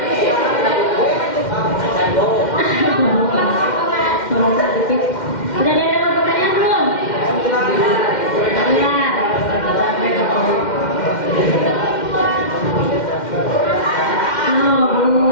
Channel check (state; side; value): late; right; 2.1 ms